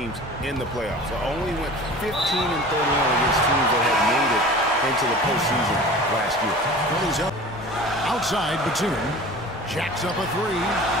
in the playoffs. They only went 15-31 against teams that had made it into the postseason last year. He's up outside. Batum jacks up a three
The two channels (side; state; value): both; normal; correlation 0.40